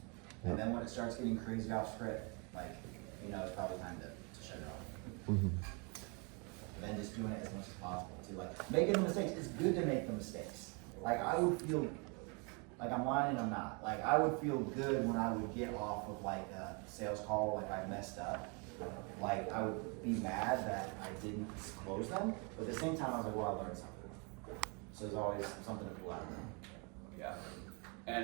And then when it starts getting crazy off script, like it's probably time to shut it off. Mm-hmm. Then just doing it as much as possible too. Like making the mistakes, it's good to make the mistakes. Like I would feel like I'm lying and I'm not. Like I would feel good when I would get off of like a sales call, like I messed up. Like I would be mad that I didn't close them, but at the same time I was like, well, I learned something. So there's always something to pull out of them. Yeah.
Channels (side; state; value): left; quieter; 33.2 dB